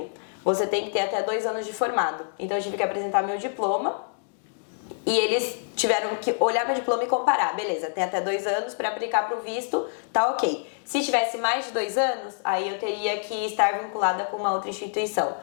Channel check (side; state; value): right; silent; digital silence